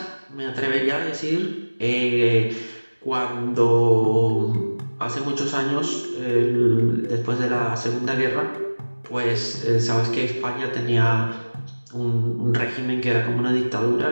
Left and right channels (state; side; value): inverted; both; correlation -1.00